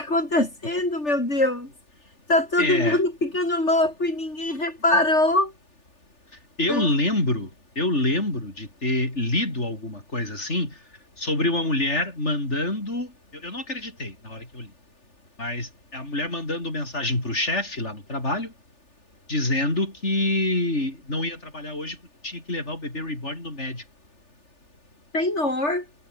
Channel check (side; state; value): right; late; 3.4 ms